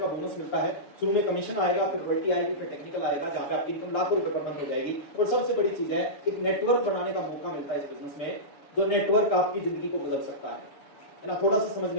का बोनस मिलता है। शुरू में कमीशन आएगा, फिर रॉयल्टी आएगी, फिर टेक्निकल आएगा, जहाँ पे आपकी इनकम लाखों रुपए पर मंथ हो जाएगी। और सबसे बड़ी चीज है, एक नेटवर्क बनाने का मौका मिलता है इस बिजनेस में, जो नेटवर्क आपकी जिंदगी को बदल सकता है ना, थोड़ा सा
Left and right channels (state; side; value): late; right; 6.9 ms